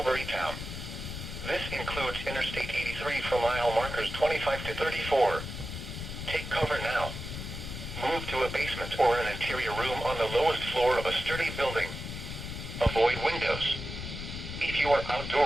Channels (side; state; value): left; noise; rumble, 7 dB below the sound